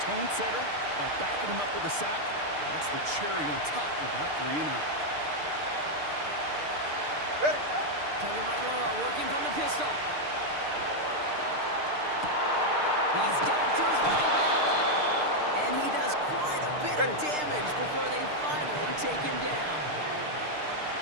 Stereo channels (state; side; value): late; left; 6.6 ms